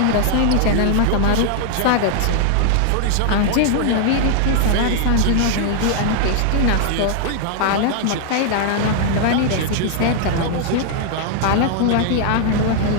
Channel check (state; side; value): different; both; correlation 0.00